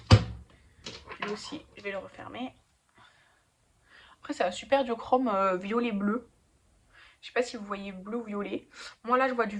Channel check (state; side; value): identical; both; correlation 1.00